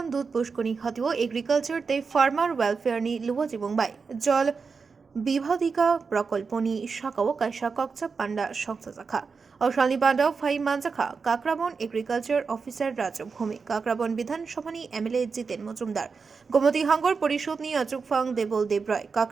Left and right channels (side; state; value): left; quieter; 5.1 dB